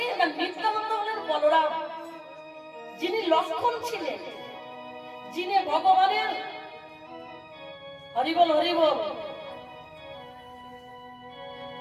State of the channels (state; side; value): identical; both; correlation 1.00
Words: না, নিত্যানন্দ হলেন বলরাম, যিনি লক্ষণ ছিলেন, যিনি ভগবানের হরিবল হরিবল